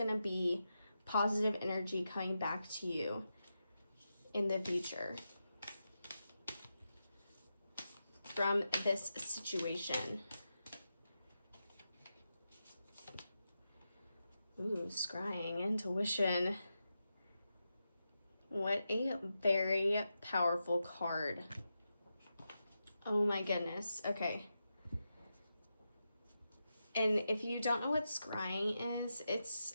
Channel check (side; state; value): both; inverted; correlation -0.89